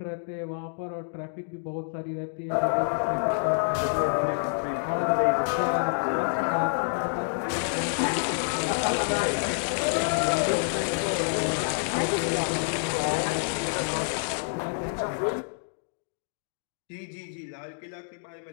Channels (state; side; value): silent; right; digital silence